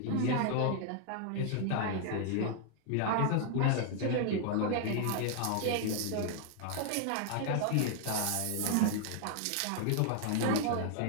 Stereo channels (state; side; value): different; both; correlation 0.00